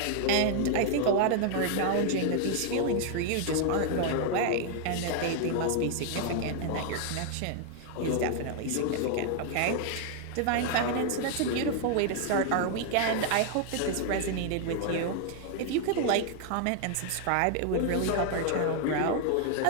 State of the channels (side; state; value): both; different; correlation 0.00